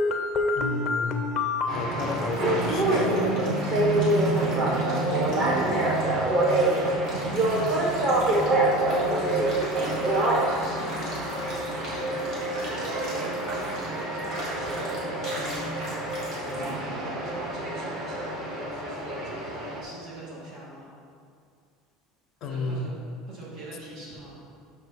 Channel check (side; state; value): both; normal; correlation 0.35